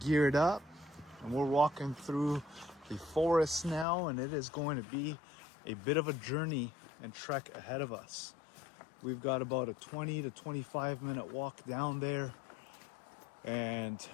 up and we're walking through the forest now, and it is going to be a bit of a journey and trek ahead of us. We've got about a 20 to 25 minute walk down there. And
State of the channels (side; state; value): right; drops out; at 3.9 s